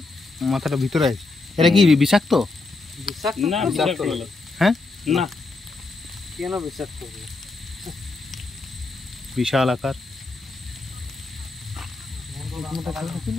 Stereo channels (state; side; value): quieter; right; 3.5 dB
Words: মাথাটা ভিতরে আছে। এটা কি বিষাক্ত? না বিষাক্ত হ্যাঁ না, কেন বিষাক্ত? বিশাল আকার।